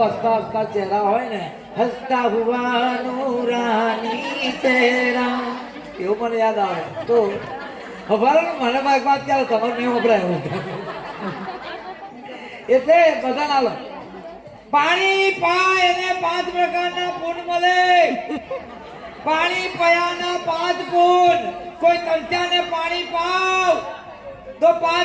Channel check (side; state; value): both; identical; correlation 1.00